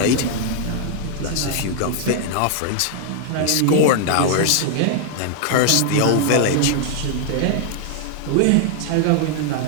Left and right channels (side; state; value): both; different; correlation 0.00